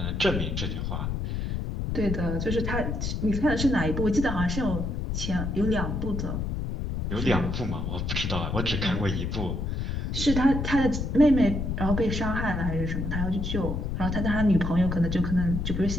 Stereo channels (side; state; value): left; noise; rumble, 2 dB below the sound